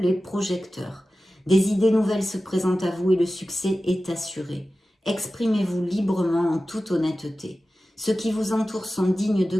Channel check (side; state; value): both; normal; correlation 0.95